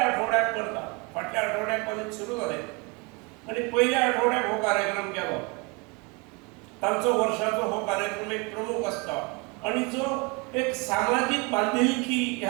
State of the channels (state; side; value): quieter; left; 29.1 dB